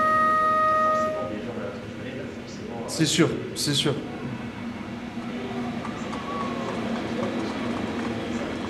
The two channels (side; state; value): both; identical; correlation 1.00